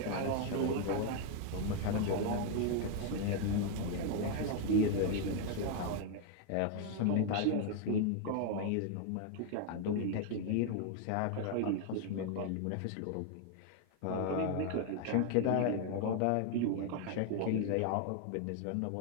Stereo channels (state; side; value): different; both; correlation 0.01